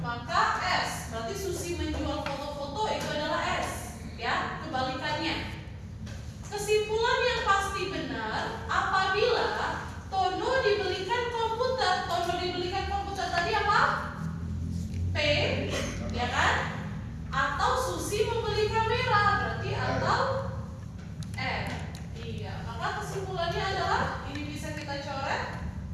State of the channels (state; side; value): identical; both; correlation 1.00